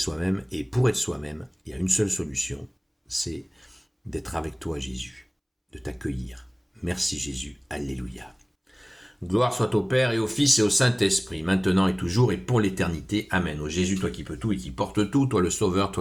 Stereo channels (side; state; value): both; identical; correlation 1.00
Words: et pour être soi-même, il y a une seule solution, c'est d'être avec toi, Jésus, de t'accueillir. Merci Jésus, alléluia. Gloire soit au Père et au Fils et au Saint-Esprit, maintenant et toujours et pour l'éternité. Amen. Ô Jésus, toi qui peux tout et qui portes tout, toi le Sauveur,